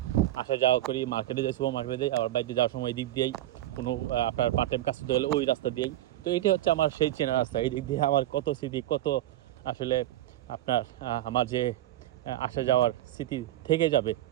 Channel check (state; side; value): quieter; left; 14.3 dB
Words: আসা যাওয়া করি, মার্কেটে যাই, সুপার মার্কেটে যাই, আবার বাড়িতে যাওয়ার সময় এই দিক দিয়েই কোনো আপনার পার্ট টাইম কাজ করতে হলে ওই রাস্তা দিয়েই। তো এটি হচ্ছে আমার সেই চেনা রাস্তা। এই দিক দিয়ে আমার কত স্মৃতি, কত আসলে আপনার আমার যে আসা যাওয়ার স্মৃতি থেকে যাবে।